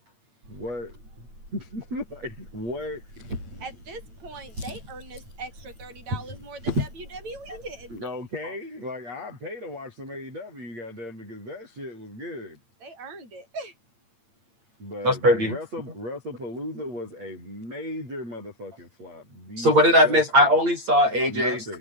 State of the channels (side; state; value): left; late; 8.8 ms